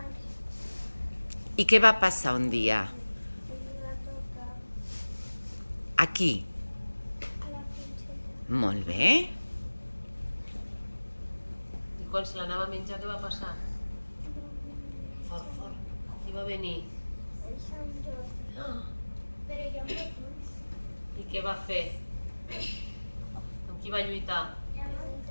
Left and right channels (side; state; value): both; inverted; correlation -1.00